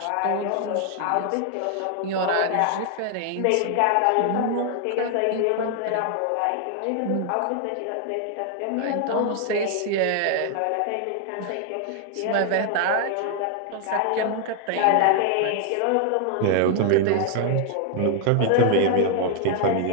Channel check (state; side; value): different; both; correlation 0.00